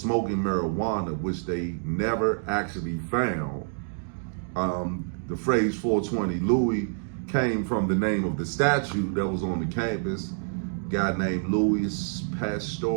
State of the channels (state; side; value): silent; left; digital silence